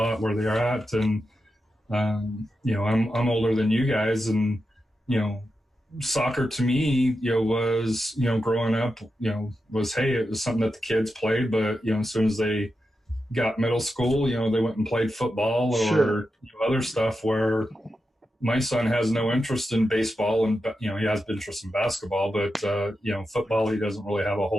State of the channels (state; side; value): normal; both; correlation 0.89